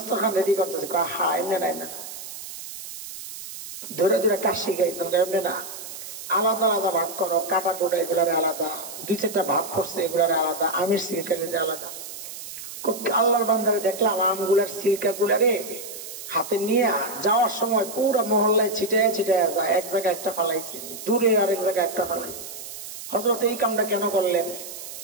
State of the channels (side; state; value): right; noise; hiss, 11 dB below the sound